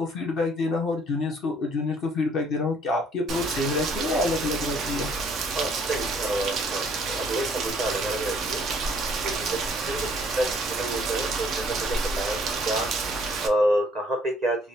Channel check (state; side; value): normal; both; correlation 0.61